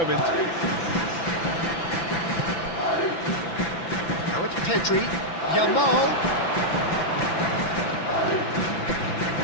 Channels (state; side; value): late; right; 5.9 ms